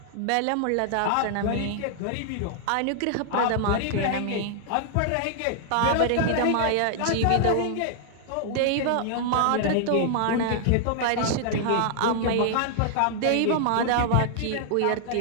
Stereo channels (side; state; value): both; different; correlation -0.01